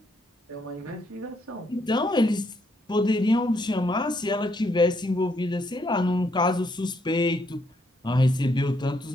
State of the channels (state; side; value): normal; both; correlation 0.74